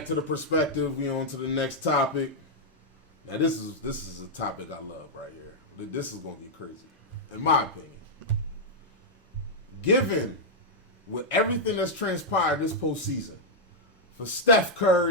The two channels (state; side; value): normal; both; correlation -0.04